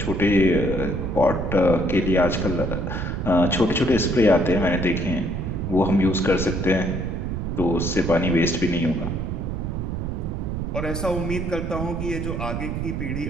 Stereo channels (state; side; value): noise; right; rumble, 3 dB below the sound